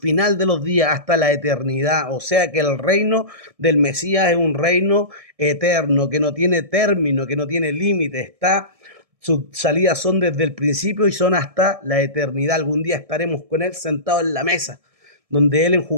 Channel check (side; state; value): left; late; 1.6 ms